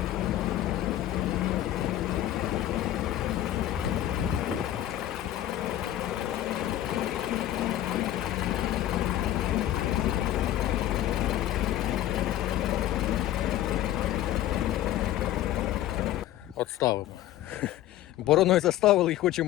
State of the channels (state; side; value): quieter; right; 13.2 dB